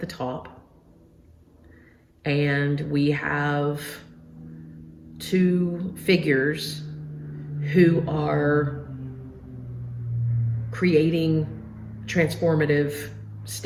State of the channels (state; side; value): identical; both; correlation 1.00